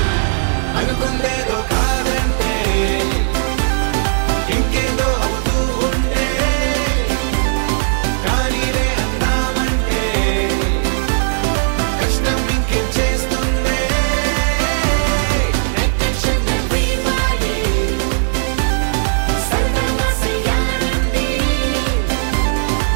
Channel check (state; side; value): silent; left; 62 dB below the other